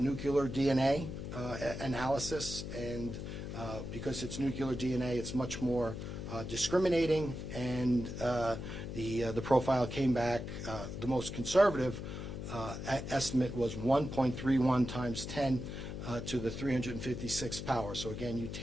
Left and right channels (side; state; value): left; noise; hum, 7 dB below the sound